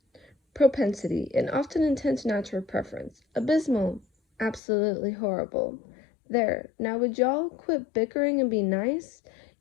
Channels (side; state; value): right; drops out; at 4.6 s